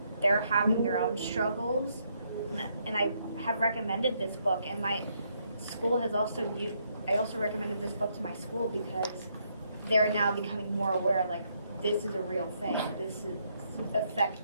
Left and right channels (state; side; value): inverted; both; correlation -0.74